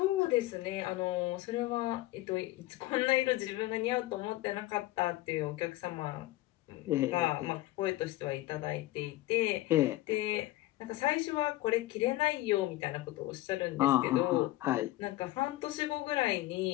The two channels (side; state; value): right; quieter; 17.5 dB